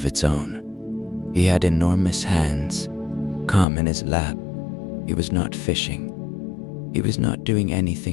its own. He had enormous hands, calm in his lap. He was not fishing. He was not doing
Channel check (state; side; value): drops out; right; at 3.7 s